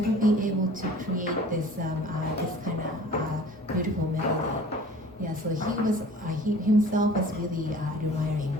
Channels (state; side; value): normal; both; correlation 0.46